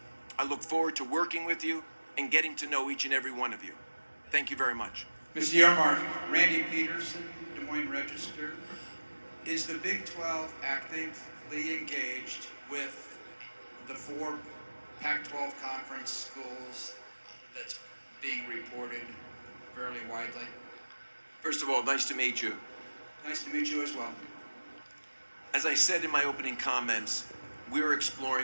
I look forward to working with you and getting to know each and every one of you. Thank you very much. Mr. Yormark, Randy Peterson, Des Moines Register. Is the Big 12 actively engaged with the 4 Pac-12 conference schools that's being reported fairly widely? First of all, nice to meet you. Nice to meet you as well. As I said in my opening comments, we're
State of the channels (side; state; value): both; inverted; correlation -1.00